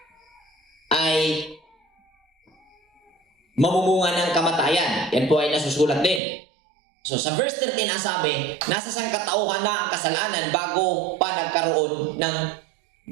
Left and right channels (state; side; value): drops out; left; at 6.2 s